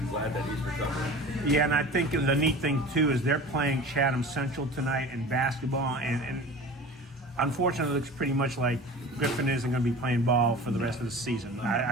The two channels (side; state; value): both; normal; correlation 0.38